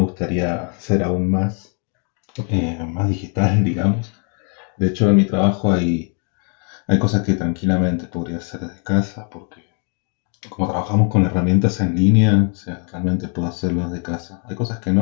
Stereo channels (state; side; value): quieter; right; 39.4 dB